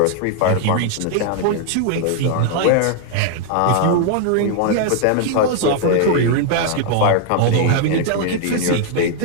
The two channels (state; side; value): different; both; correlation 0.00